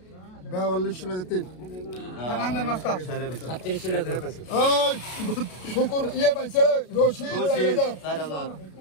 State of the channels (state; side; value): late; right; 33 ms